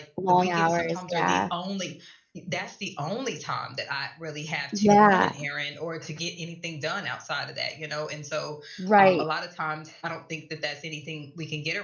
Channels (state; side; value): identical; both; correlation 1.00